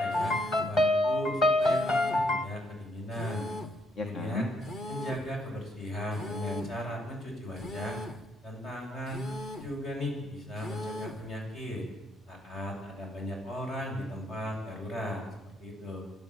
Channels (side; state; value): both; normal; correlation 0.72